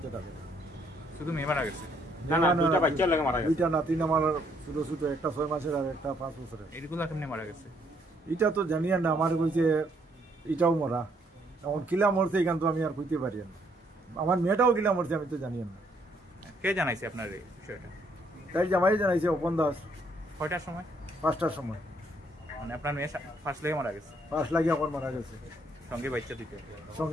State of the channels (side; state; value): both; normal; correlation 0.69